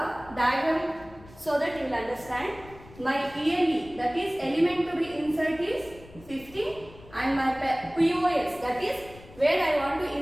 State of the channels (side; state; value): left; noise; rumble, 21 dB below the sound